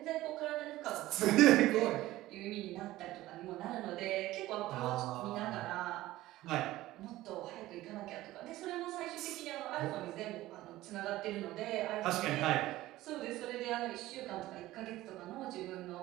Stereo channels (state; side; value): quieter; left; 16.4 dB